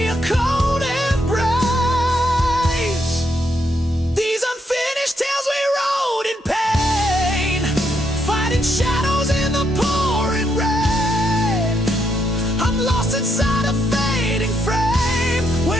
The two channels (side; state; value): both; normal; correlation 0.77